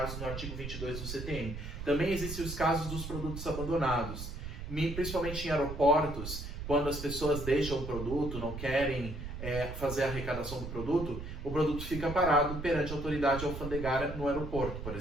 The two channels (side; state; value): right; noise; rumble, 7 dB below the sound